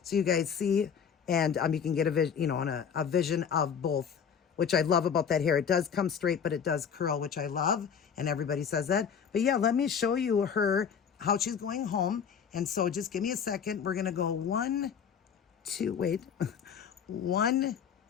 so you guys see. And you can get a vision of both, which I love about that hair. It does come straight, but it does curl, which I love. And everybody says that. But yeah, let me show you how she's going home. And so just give me a second. We're going to go 1,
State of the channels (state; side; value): quieter; right; 7.3 dB